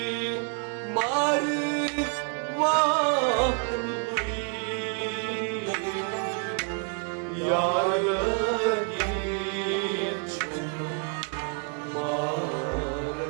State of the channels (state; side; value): quieter; left; 39.6 dB